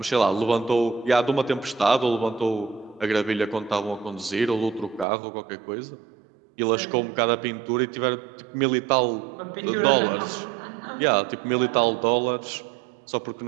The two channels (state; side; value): drops out; left; at 5.1 s